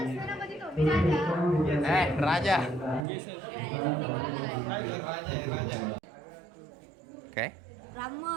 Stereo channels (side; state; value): left; drops out; at 3.0 s